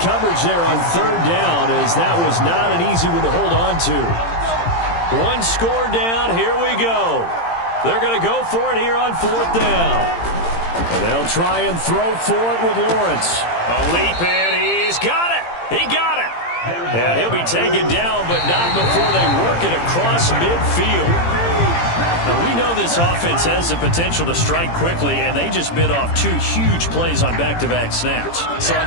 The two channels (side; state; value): right; late; 18 ms